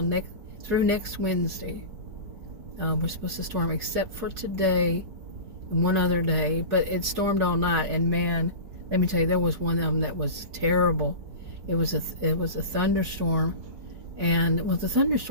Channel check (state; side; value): late; left; 4.8 ms